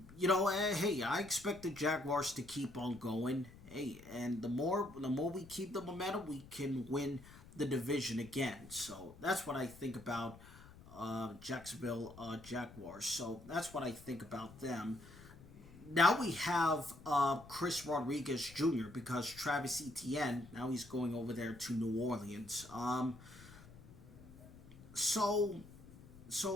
hey, I expect the Jaguars to keep on going. Hey, and the more we keep the momentum, we can win the division again. So that's what I think about Jacksonville Jaguars. So that's what I think about them. Now we have Chris Rodriguez Jr. because Travis Etienne, now he's going over there to New Orleans. So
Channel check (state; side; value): noise; left; rumble, 19 dB below the sound